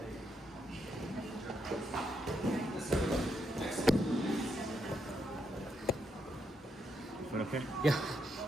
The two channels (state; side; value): normal; both; correlation 0.79